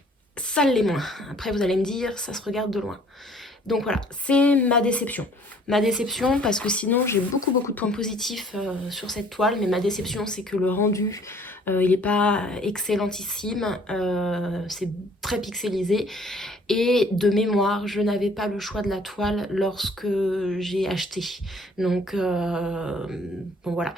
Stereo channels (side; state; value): both; normal; correlation 0.57